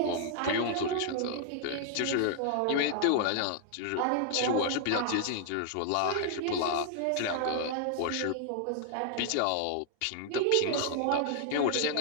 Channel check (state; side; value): different; both; correlation 0.00